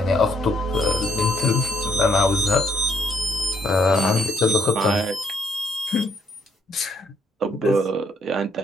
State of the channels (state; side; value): normal; both; correlation 0.70